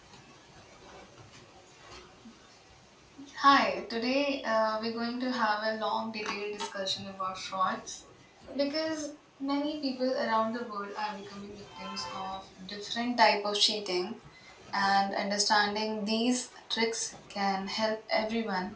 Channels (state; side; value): identical; both; correlation 1.00